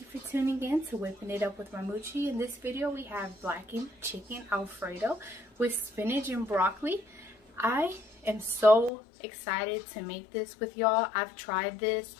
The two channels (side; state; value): right; drops out; at 8.9 s